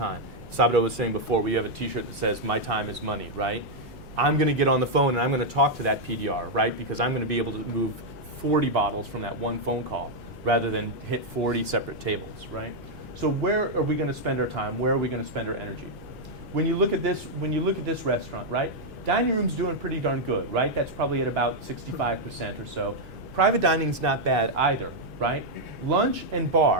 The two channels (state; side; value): noise; right; hum, 20 dB below the sound